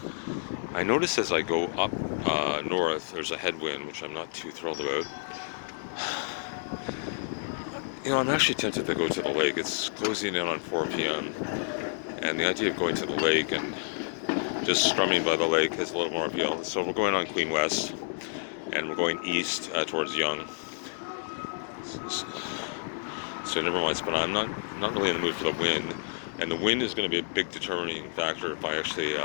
I notice as I go up north, there's a headwind, which I'm not too thrilled about. I'm actually tempted to go to the lake. It's closing in on 4 p.m. And the idea of going to the lake and just strumming by the lake has a little more appeal. So we're going on Queen West, and we're going east towards Yonge. So never mind. But I'm not really in the mood for the wind, and the wind is going to be a big determining factor if I actually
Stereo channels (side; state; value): right; silent; digital silence